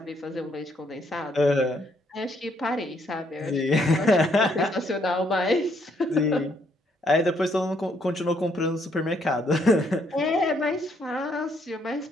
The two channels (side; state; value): both; normal; correlation 0.71